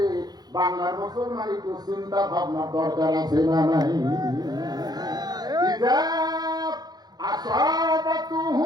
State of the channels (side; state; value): left; late; 0.19 ms